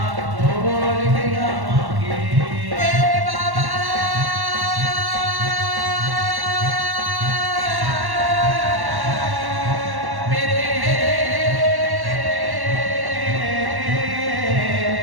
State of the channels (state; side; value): late; left; 1.1 ms